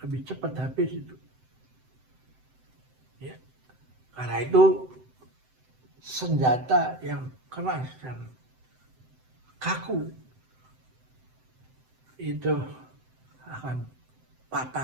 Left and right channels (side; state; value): left; late; 7.8 ms